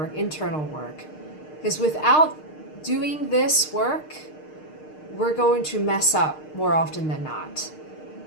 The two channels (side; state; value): right; late; 6.5 ms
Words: internal work, because without doing this work, we're going to mess up more often than not.